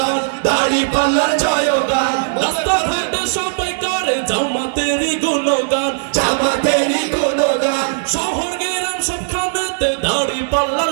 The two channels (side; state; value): left; silent; digital silence